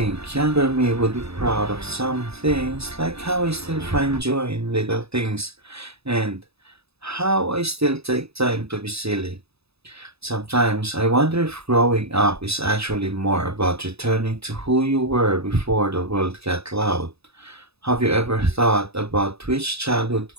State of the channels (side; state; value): left; late; 0.79 ms